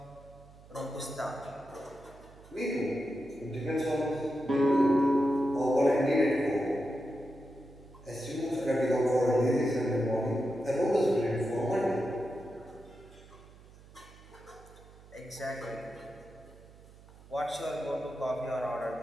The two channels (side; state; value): right; noise; hum, 22 dB below the sound